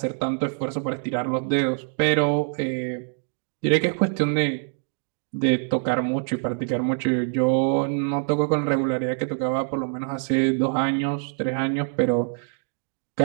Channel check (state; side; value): silent; left; 57 dB below the other